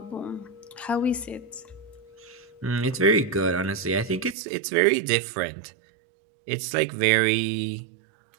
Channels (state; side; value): drops out; left; at 4.4 s